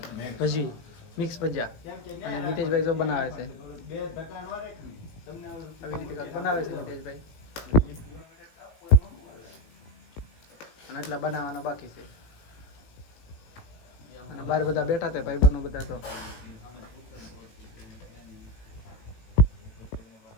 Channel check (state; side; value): late; right; 18 ms